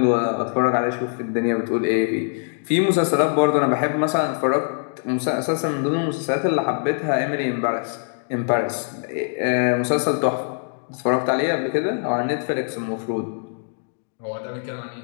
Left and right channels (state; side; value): silent; right; digital silence